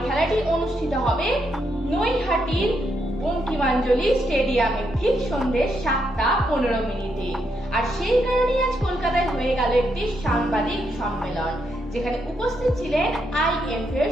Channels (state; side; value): normal; both; correlation 0.79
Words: খেলাটি অনুষ্ঠিত হবে নৈহাটির বঙ্কিমাঞ্জলি স্টেডিয়ামে ঠিক সন্ধ্যে 7:15। আর সেই কারণেই আজ কলকাতায় হয়ে গেল একটি সাংবাদিক সম্মেলন, যেখানে উপস্থিত ছিলেন IMF এর